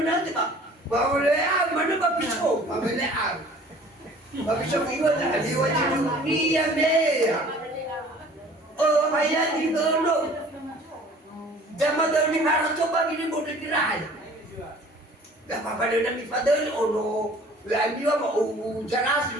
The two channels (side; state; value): both; normal; correlation 0.50